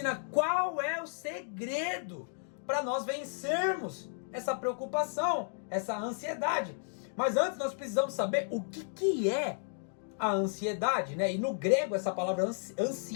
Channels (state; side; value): silent; right; digital silence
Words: qual é o segredo para nós vencermos essa preocupação, essa ansiedade. Mas antes nós precisamos saber o que é a ansiedade, né? E no grego essa palavra